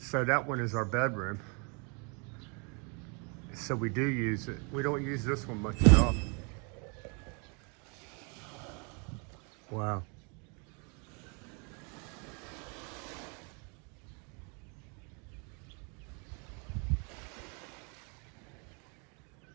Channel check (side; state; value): left; quieter; 34.4 dB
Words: that one is our bedroom. So we do use it. We don't use this one much at all. Wow.